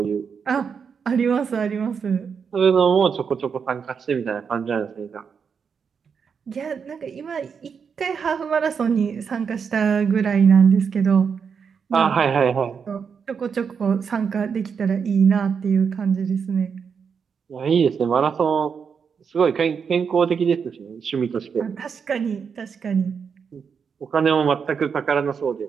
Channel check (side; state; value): left; quieter; 6.4 dB